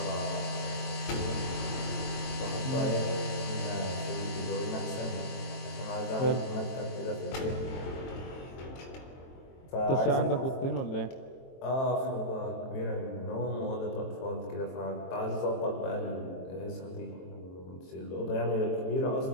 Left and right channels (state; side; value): late; right; 23 ms